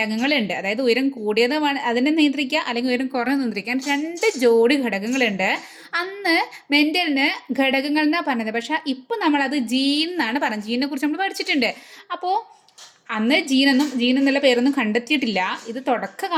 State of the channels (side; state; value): both; identical; correlation 1.00